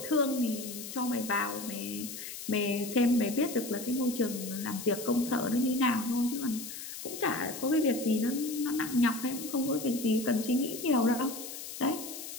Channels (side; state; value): left; noise; hiss, 9 dB below the sound